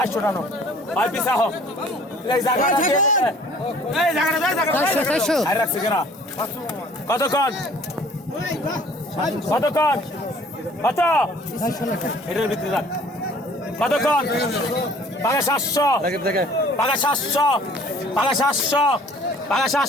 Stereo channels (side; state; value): both; normal; correlation 0.53